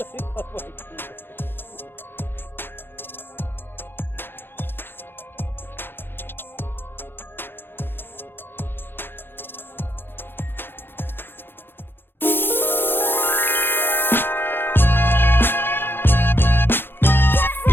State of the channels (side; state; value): right; late; 0.10 ms